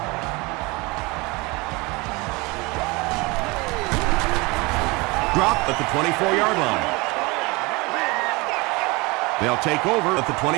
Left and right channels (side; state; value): left; quieter; 25.1 dB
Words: Drop at the 24-yard line. They'll take over at the